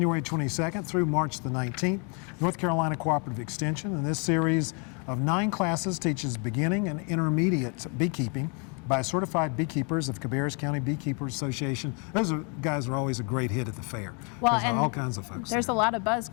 22nd through March the 19th. North Carolina Cooperative Extension. And this series of 9 classes teaches beginning and intermediate beekeeping by certified beekeepers of Cabarrus County Beekeepers Association. Those guys are always a great hit at the fair. Well, There's and all kinds of folks there's there. a lot of buzz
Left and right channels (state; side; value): quieter; right; 35.9 dB